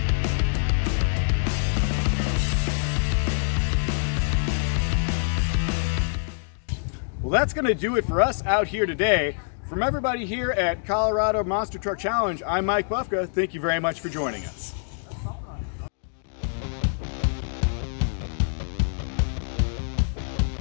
Well, that's going to do it for us out here today. From everybody here at Colorado Monster Truck Challenge, I'm Mike Bufka. Thank you very much for joining us.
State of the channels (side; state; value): right; silent; digital silence